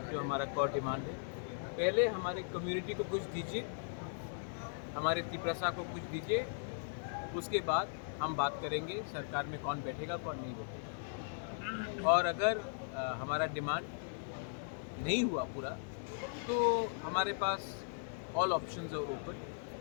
जो हमारा कोर डिमांड है। पहले हमारे कम्युनिटी को कुछ दीजिए, हमारे तिप्रसा को कुछ दीजिए, उसके बाद हम बात करेंगे सरकार में कौन बैठेगा कौन नहीं बैठेगा। और अगर हमारा डिमांड नहीं हुआ पूरा तो हमारे पास ऑल ऑप्शंस आर ओपन,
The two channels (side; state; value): right; silent; digital silence